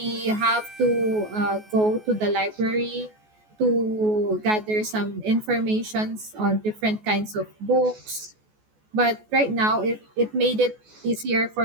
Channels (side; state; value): left; late; 14 ms